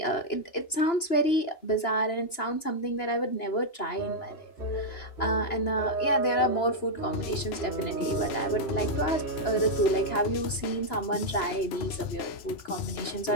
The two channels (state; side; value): late; right; 2.9 ms